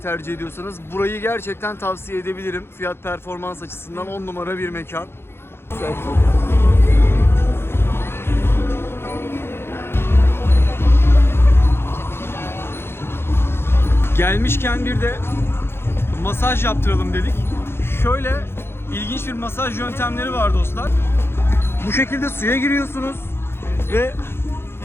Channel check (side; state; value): right; late; 0.11 ms